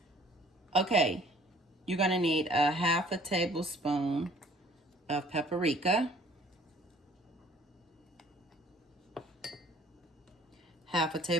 Okay, you're going to need a 1/2 tablespoon of paprika, 1/2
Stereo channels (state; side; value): normal; both; correlation 0.55